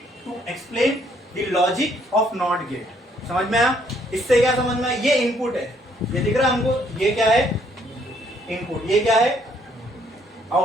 to explain the logic of not gate. समझ में आया? इससे क्या समझ में आया? ये इनपुट है, ये दिख रहा है हमको, ये क्या है? इनपुट। ये क्या है?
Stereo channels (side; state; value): both; normal; correlation 0.67